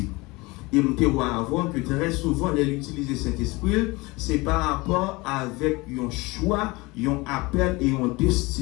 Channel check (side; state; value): right; quieter; 23.6 dB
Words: Et je vois avoir que très souvent, l'utiliser Saint-Esprit, c'est par rapport avec un choix, un appel et une